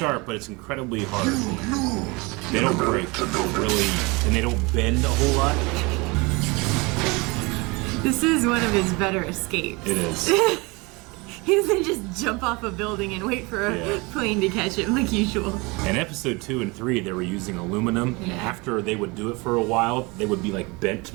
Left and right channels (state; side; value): quieter; left; 26.3 dB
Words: but it's incredibly hard. They don't break really, and they don't bend a whole lot. This is one of his better escapes. It is. He doesn't just jump off a building and wait for a Yeah. plane to catch him like usual. In episode 2 and 3, they were using aluminum, and Yeah. after they would do it for a while, they would be like bent